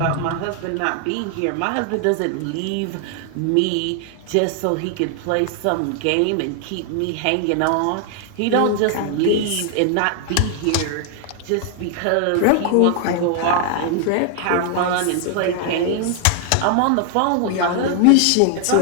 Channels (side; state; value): both; different; correlation 0.00